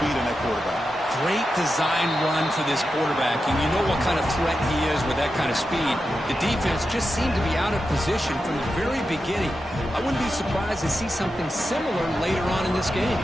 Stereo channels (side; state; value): both; normal; correlation 0.89